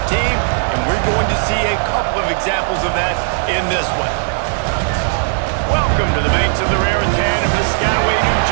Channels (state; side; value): silent; left; 55 dB below the other